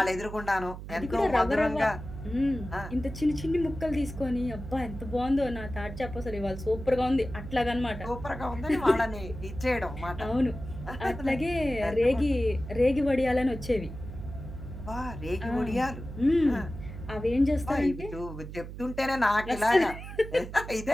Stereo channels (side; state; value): right; noise; hum, 10 dB below the sound